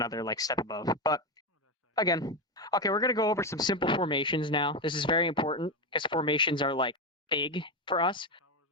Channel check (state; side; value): normal; both; correlation 0.12